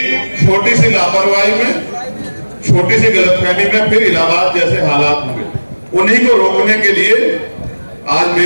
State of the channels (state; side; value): inverted; both; correlation -1.00